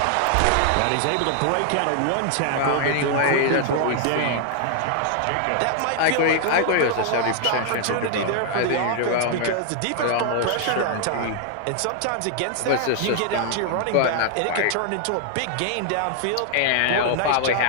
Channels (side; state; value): both; different; correlation 0.00